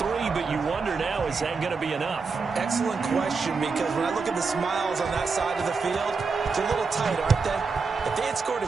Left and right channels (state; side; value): quieter; left; 4.7 dB